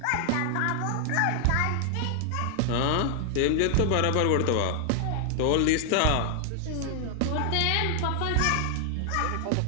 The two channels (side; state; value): both; different; correlation 0.00